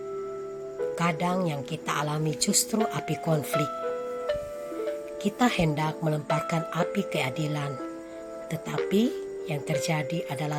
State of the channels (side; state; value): both; identical; correlation 1.00